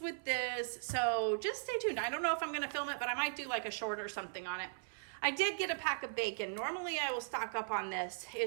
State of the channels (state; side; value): silent; left; 52 dB below the other